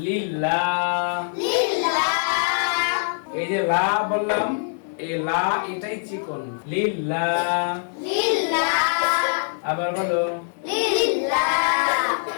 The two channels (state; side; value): silent; right; digital silence